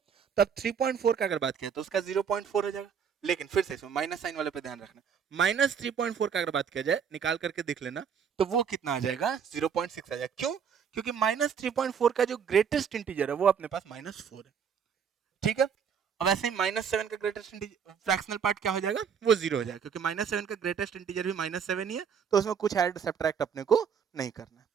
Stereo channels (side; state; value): left; quieter; 7.2 dB